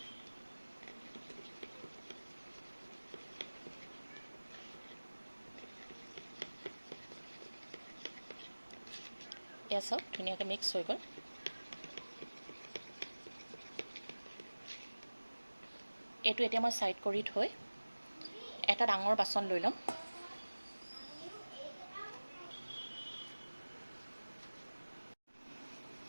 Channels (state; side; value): inverted; both; correlation -1.00